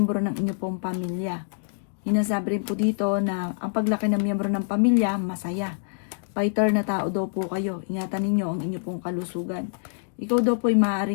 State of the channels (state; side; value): silent; right; digital silence